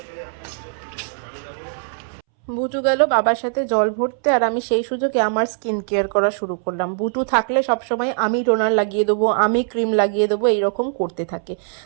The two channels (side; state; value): left; silent; 65 dB below the other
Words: বুটু গেল বাবার সাথে জল ভরতে, আর আমি সেই সুযোগে আমার স্কিন কেয়ার করা শুরু করলাম। বুটু থাকলে সবসময় আমি টোনার লাগিয়ে দেবো, আমি ক্রিম লাগিয়ে দেবো, এইরকম করতে থাকে।